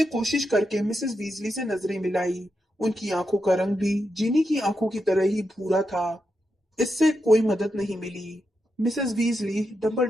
कोशिश करके मिसेस वीजली से नजरें मिलाई। उनकी आंखों का रंग भी जीनी की आंखों की तरह ही भूरा था। इससे कोई मदद नहीं मिली। मिसेस वीजली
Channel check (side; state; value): both; normal; correlation 0.86